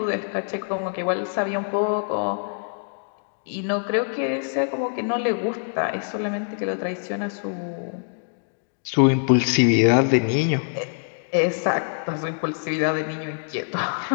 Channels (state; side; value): silent; right; digital silence